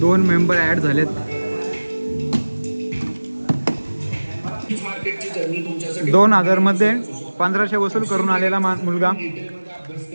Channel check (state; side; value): inverted; both; correlation -1.00